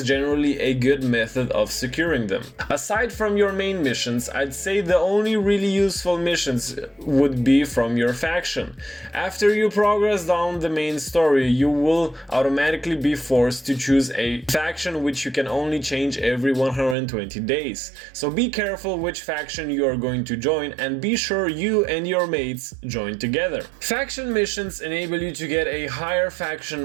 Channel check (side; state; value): left; drops out; at 16.9 s